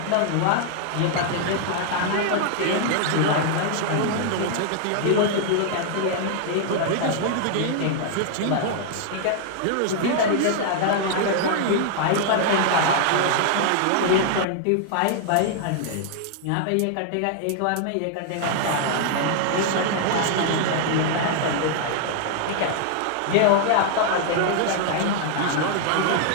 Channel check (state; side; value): different; both; correlation 0.00